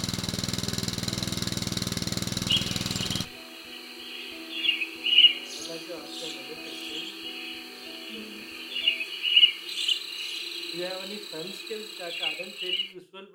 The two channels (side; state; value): both; identical; correlation 1.00